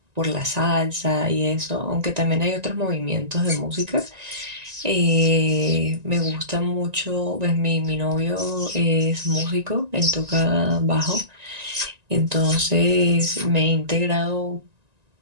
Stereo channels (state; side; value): late; left; 1.9 ms